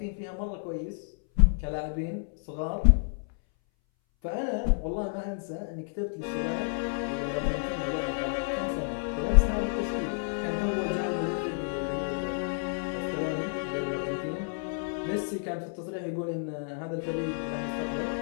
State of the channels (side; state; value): right; silent; 58 dB below the other